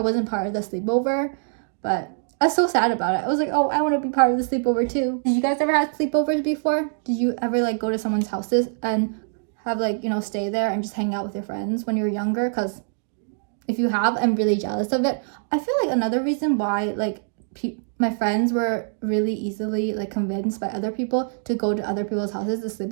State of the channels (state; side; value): silent; left; digital silence